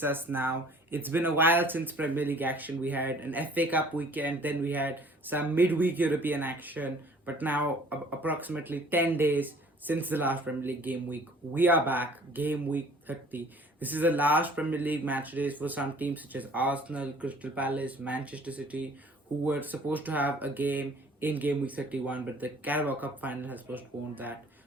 us now. It's been a while since Premier League action. We had an FA Cup weekend, then we had some midweek European action, but now approximately 10 days since the last Premier League game week, we are back. Game week 30. This is the last Premier League match days for some teams such as Arsenal, Crystal Palace, Manchester City, who were supposed to have a game in game week 31, but the Carabao Cup final has postponed that.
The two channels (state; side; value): normal; both; correlation 0.53